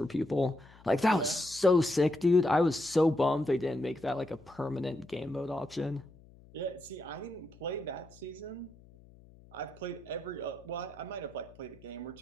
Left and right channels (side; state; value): left; noise; hum, 24 dB below the sound